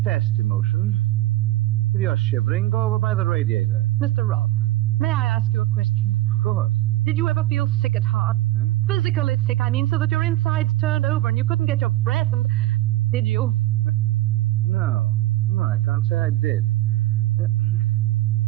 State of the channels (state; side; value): quieter; left; 16.2 dB